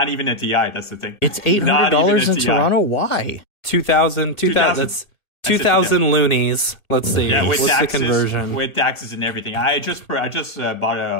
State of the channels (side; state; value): right; late; 1.8 ms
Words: even a TI. That's the thing. It's $800 in Toronto. Why? 2,000. That's 2,000 loonies. Let's see. Yeah, with what's taxes, the conversion? With taxes and everything. I just bought